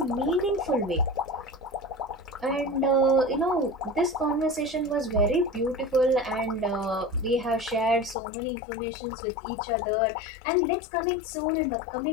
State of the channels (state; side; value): drops out; right; at 8.2 s